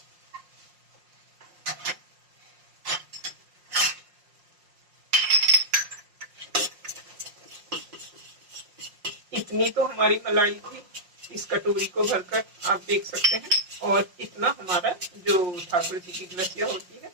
इतनी तो हमारी मलाई थी इस कटोरी को भरकर, आप देख सकते हैं। और इतना हमारा जो ठाकुर जी की ग्लसिया होती है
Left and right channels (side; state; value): left; late; 5.5 ms